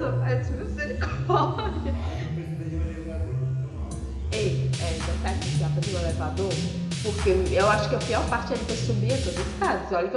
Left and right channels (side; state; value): both; identical; correlation 1.00